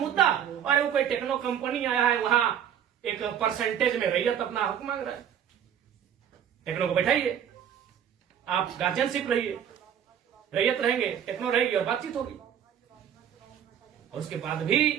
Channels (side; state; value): left; quieter; 9.3 dB